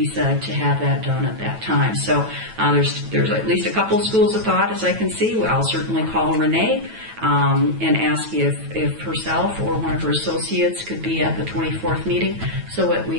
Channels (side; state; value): left; late; 9.1 ms